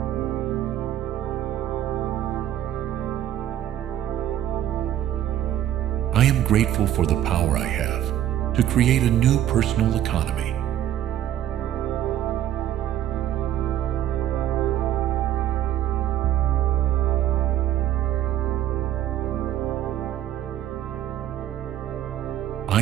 I am grateful for the power I have to create a new personal economy.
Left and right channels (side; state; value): left; quieter; 11.5 dB